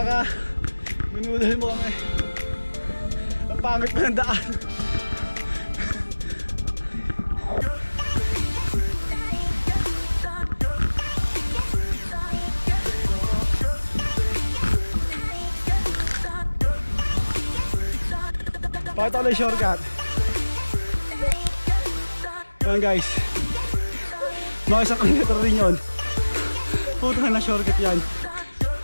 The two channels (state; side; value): inverted; both; correlation -1.00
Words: ka! Minudal mo kami! Ang pangit pa ng daan! Pakita ko lang yung shortcut. Ayan guys, mga isang kilometer rin yun. Puta na shortcut yan.